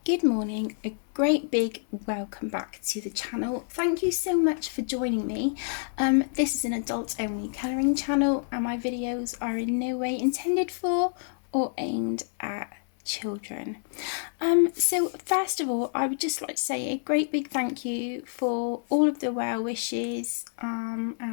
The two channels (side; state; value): right; silent; digital silence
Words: good morning, a great big welcome back to the channel. Thank you so much for joining me. This is an adult only colouring channel and my videos are in no way intended for or aimed at children. So first of all, I would just like to say a great big thank you for all of the well wishes